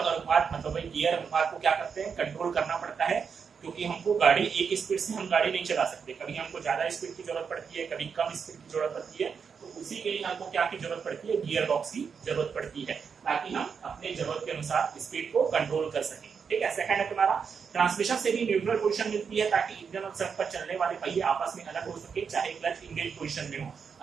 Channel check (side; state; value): left; quieter; 6.2 dB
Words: अनुपात मतलब भाई गियर अनुपात को क्या करते हैं, कंट्रोल करना पड़ता है। क्योंकि हमको गाड़ी एक स्पीड से हम गाड़ी नहीं चला सकते, कभी हमको ज्यादा स्पीड की जरूरत पड़ती है, कभी कम स्पीड की जरूरत पड़ती है। तो उसी के लिए हमको क्या की जरूरत पड़ती है, गियर बॉक्स की जरूरत पड़ती है, ताकि हम अपने जरूरत के अनुसार स्पीड को कंट्रोल कर सकें, ठीक है। सेकंड है तुम्हारा ट्रांसमिशन से भी न्यूट्रल पोजीशन मिलती है, ताकि इंजन और सड़क पर चलने वाले पहिए आपस में अलग हो सके, चाहे क्लच इंगेज पोजीशन में हो।